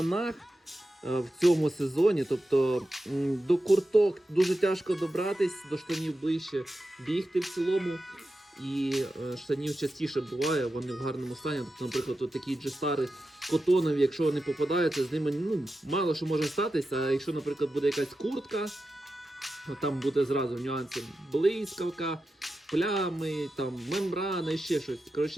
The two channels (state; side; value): normal; both; correlation 0.91